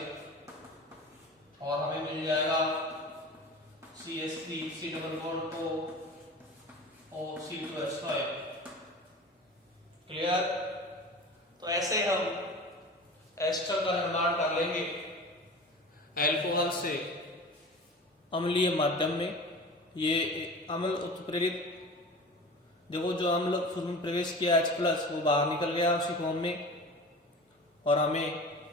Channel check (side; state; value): both; normal; correlation 0.36